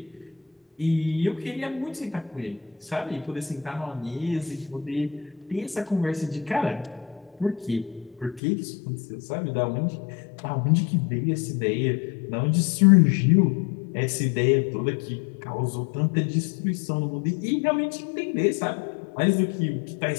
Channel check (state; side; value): drops out; right; at 8.4 s